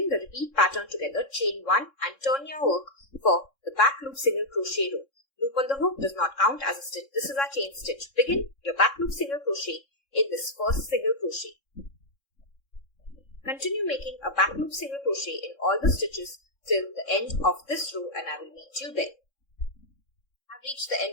the repeat pattern together. Chain 1 and turn your work for the back loop single crochet row. Loop on the hook does not count as a stitch. This is our chain stitch. Begin your back loop single crochet in this first single crochet. Continue making a back loop single crochet in all the stitches till the end of this row and I will meet you there. I've reached the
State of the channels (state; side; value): late; right; 3.6 ms